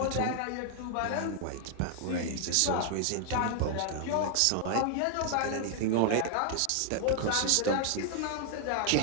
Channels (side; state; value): both; different; correlation 0.00